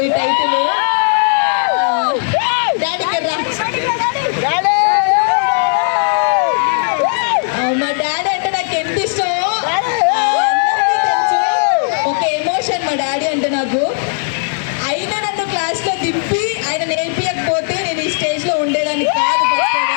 ఈ టైటిల్. మా డాడీ అంటే నాకు ఎంత ఇష్టమో అందరికీ తెలుసు. ఒక ఎమోషన్ మా డాడీ అంటే నాకు. అయినా నన్ను క్లాస్లో దింపి ఆయన నేర్పించకపోతే నేను ఈ స్టేజ్లో ఉండేదాన్ని కాదు.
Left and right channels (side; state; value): right; silent; 69 dB below the other